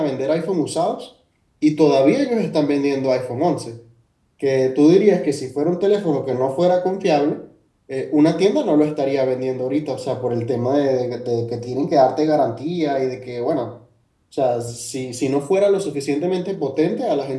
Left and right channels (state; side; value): identical; both; correlation 1.00